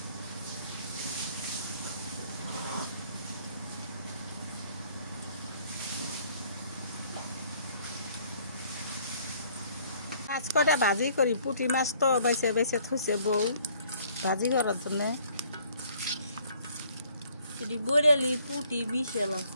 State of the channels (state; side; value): inverted; both; correlation -0.61